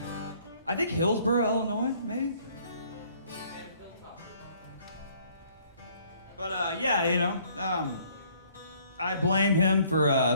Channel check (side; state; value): both; inverted; correlation -0.61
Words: I think Hillsboro, Illinois, maybe. But I blame him for